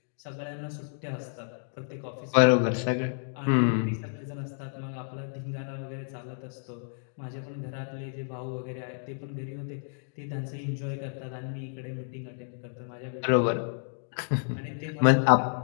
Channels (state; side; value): silent; right; digital silence